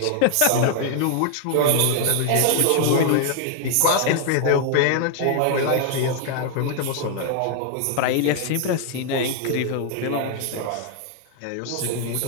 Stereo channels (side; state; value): both; different; correlation 0.00